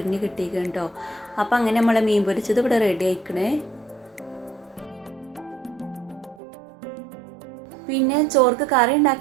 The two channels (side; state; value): left; drops out; at 6.4 s